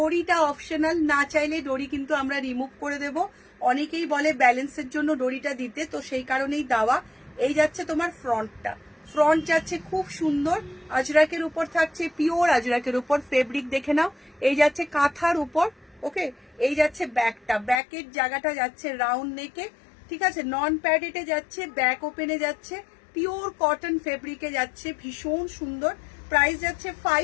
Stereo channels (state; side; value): drops out; right; at 17.8 s